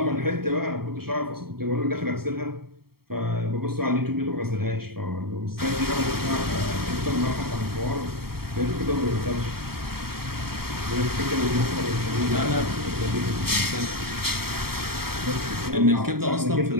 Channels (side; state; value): left; late; 0.94 ms